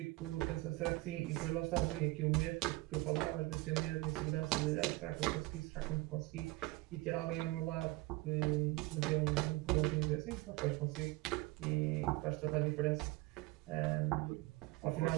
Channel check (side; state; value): left; quieter; 21.6 dB